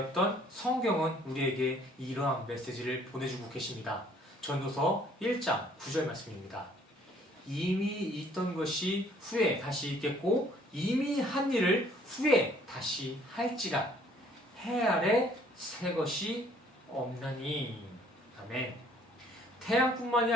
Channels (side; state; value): both; normal; correlation 0.60